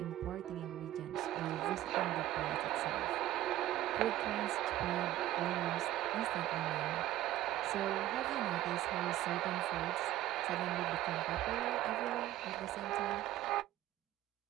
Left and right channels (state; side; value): quieter; left; 14.3 dB